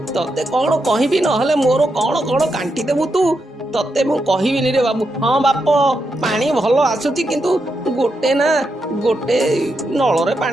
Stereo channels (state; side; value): normal; both; correlation 0.84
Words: तते कौन कहबी नहले मोर कौन कौन कांटी देबु तू तते मु कहबिनी रे बाबू। हाँ बाप पानी भल आसुची किंतु गोटे नल रे